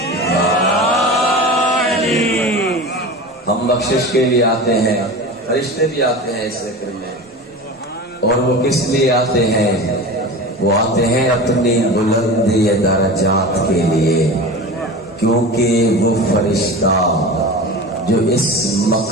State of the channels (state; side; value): normal; both; correlation 0.31